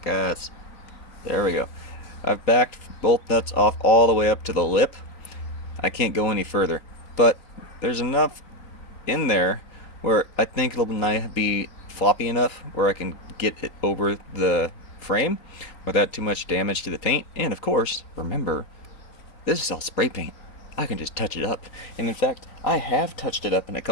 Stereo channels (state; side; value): late; right; 4.1 ms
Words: There we go. I've backed both nuts off all the way up to the lip. I can't go any further, but there's enough in there where I think it'll be floppy enough where I can get it over the frame without too much damage to the paint. And of course, remember, this is all spray paint. I can just touch it up. And in fact, I have touched it up in a